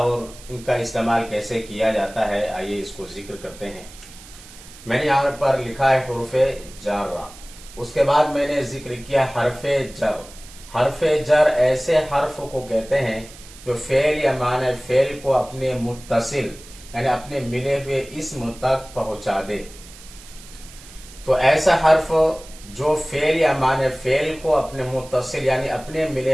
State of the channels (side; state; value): right; noise; hiss, 19 dB below the sound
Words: इनका इस्तेमाल कैसे किया जाता है। आइए इसको ज़िक्र करते हैं। मैंने यहाँ पर लिखा है हुरूफ़ जारा, उसके बाद मैंने ज़िक्र किया हरफ़े जर। हरफ़े जर ऐसे हर्फ को कहते हैं जो फ़ेल या माने फ़ेल को अपने मुत्तसिल यानी अपने मिले हुए इस्म तक पहुंचा दे। तो ऐसा हर्फ जो फेल या माने फेल को अपने मुत्तसिल यानी अपने